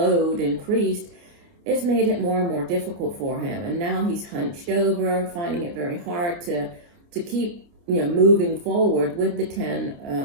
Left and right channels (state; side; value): late; left; 29 ms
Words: increased, it's made it more and more difficult for him. And now he's hunched over, finding it very hard to keep, moving forward with the